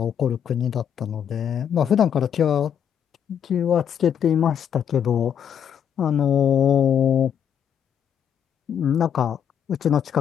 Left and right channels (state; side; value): quieter; right; 8.5 dB